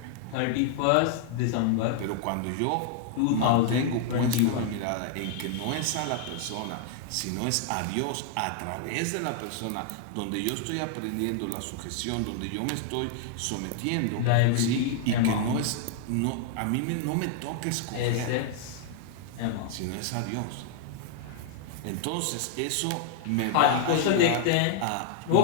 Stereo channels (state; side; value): different; both; correlation 0.00